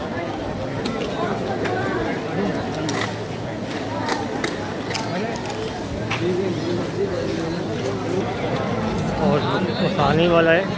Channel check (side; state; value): both; identical; correlation 1.00